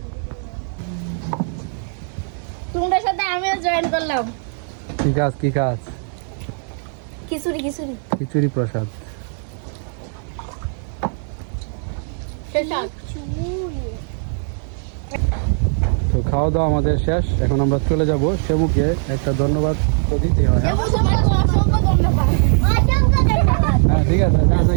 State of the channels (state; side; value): silent; left; 58 dB below the other